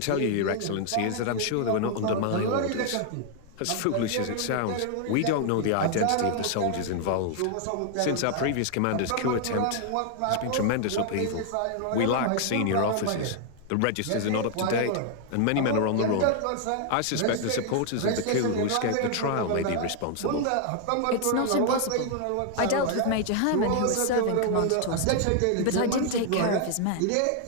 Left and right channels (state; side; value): different; both; correlation 0.00